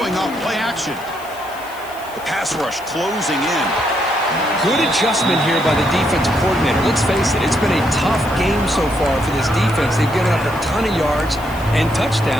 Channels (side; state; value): left; noise; hiss, 20 dB below the sound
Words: off play action. The pass rush closing in. Good adjustment here by the defensive coordinator. Let's face it, it's been a tough game so far for this defense. They've given up a ton of yards and